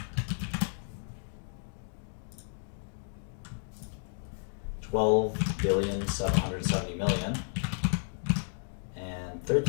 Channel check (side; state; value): right; silent; 56 dB below the other